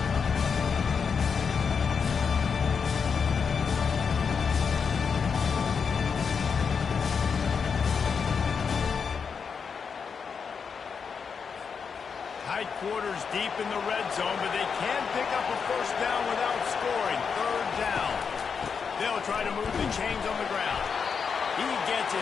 Tight quarters deep in the red zone, but they can pick up a first down without scoring. Third down. They'll try to move the chains on the ground. He gets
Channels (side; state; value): right; quieter; 6.0 dB